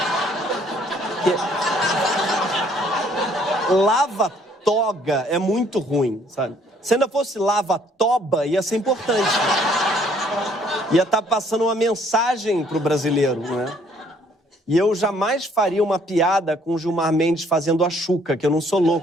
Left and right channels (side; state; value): both; normal; correlation 0.62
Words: Lava-toga é muito ruim, sabe? Se ainda fosse lava-toba, ia ser importante. Ia estar passando uma mensagem pro brasileiro, não é? E eu jamais faria uma piada com o Gilmar Mendes fazendo a Xuca, que eu não sou